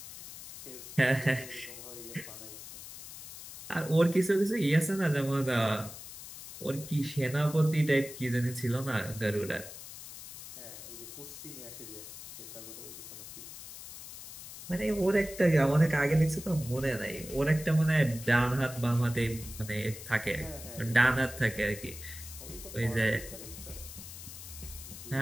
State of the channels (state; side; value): noise; left; hiss, 13 dB below the sound